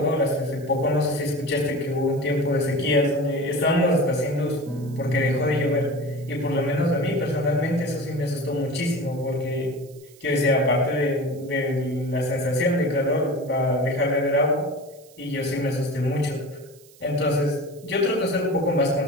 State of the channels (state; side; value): noise; right; hiss, 26 dB below the sound